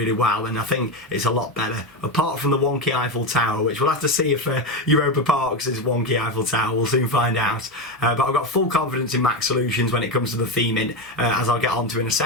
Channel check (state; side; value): normal; both; correlation 0.14